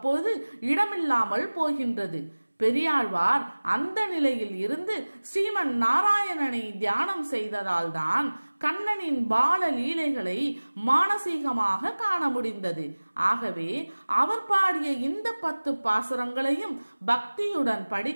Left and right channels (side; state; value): both; inverted; correlation -1.00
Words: இடமில்லாமல் போகின்றது. பெரியாழ்வார் அந்த நிலையில் இருந்து ஸ்ரீமன் நாராயணனை தியானம் செய்ததால் தான் கண்ணனின் பால லீலைகளை மானசீகமாக காண முடிந்தது. ஆகவே அவர் பாடிய இந்த 10 பாசுரங்களையும் பக்தியுடன்